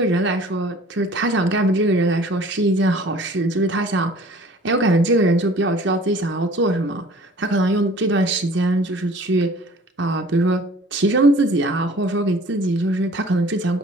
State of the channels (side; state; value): both; normal; correlation 0.49